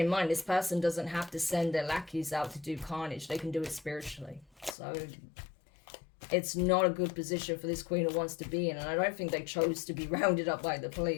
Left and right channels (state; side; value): drops out; right; at 4.8 s